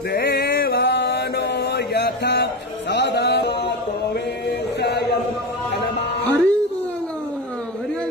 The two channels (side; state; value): both; normal; correlation 0.21